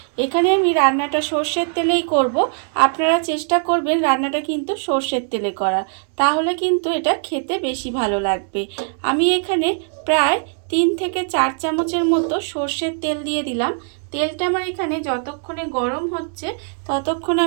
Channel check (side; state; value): left; silent; 56 dB below the other